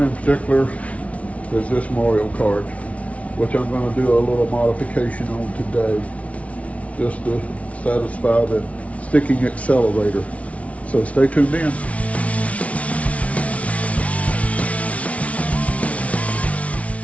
in particular is this Mario Kart, which I'm going to do a little modification on today, just to satisfy the sticking accelerator. So stay tuned in.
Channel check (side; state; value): right; late; 0.065 ms